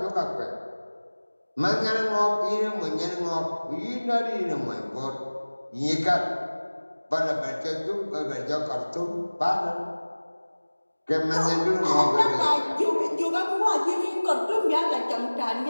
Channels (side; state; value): both; inverted; correlation -1.00